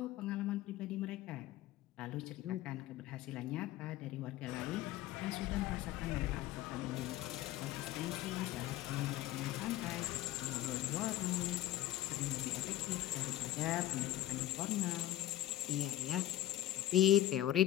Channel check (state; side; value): quieter; right; 14.3 dB